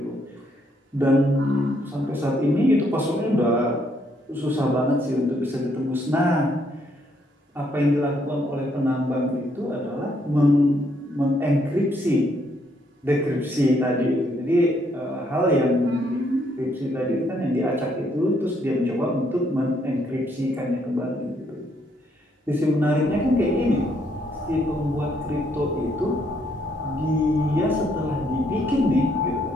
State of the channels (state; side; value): normal; both; correlation 0.72